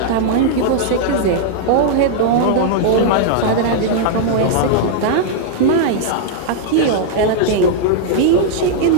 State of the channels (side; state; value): both; different; correlation -0.01